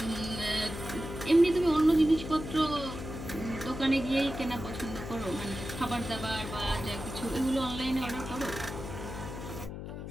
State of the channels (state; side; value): noise; left; hum, 8 dB below the sound